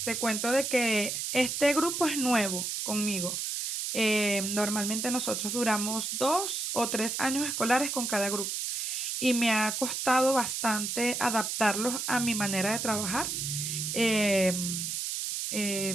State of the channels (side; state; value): right; noise; hiss, 2 dB below the sound